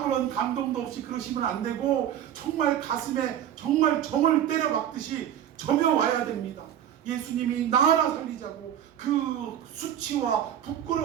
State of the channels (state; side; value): quieter; left; 10.5 dB